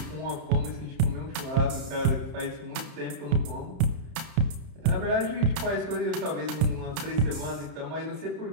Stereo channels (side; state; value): left; late; 30 ms